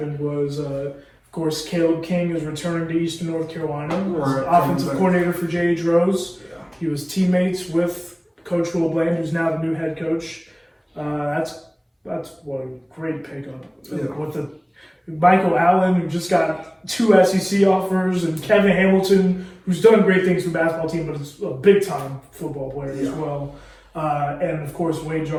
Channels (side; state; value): both; identical; correlation 1.00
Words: was, of course, Caleb King is returning to Eastern North Carolina as offensive coordinator for J.H. Rose. Yeah. He was teammates with Coach Will Bland, who's now the new head coach. That's what a great pickup. Yeah. With the Michael Allen, who just got 2 SEC offers, and Kevin Hamilton, who's done great things for the basketball team, but is a big-time football player as well. And, of course, Wade